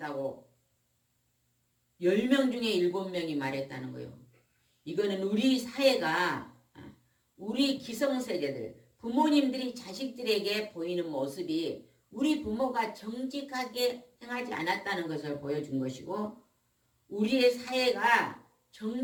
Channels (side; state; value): both; identical; correlation 1.00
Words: 10명 중에 7명이 말했다는 거예요. 이거는 우리 사회가 우리 기성세대들, 부모님들이 자식들에게 보이는 모습이 우리 부모가 정직하게 행하지 않았다는 것을 보여준 것이고 우리의 사회가